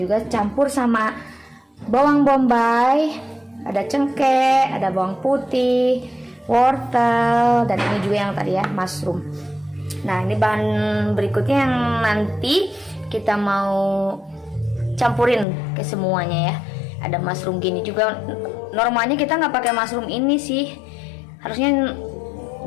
campur sama bawang bombay, ada cengkeh, ada bawang putih, wortel, dan ini juga yang tadi ya mushroom. Nah ini bahan berikutnya yang nanti kita mau campurin ke semuanya ya. Ada mushroom gini juga. Normalnya kita nggak pakai mushroom ini sih, harusnya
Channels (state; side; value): drops out; right; at 15.5 s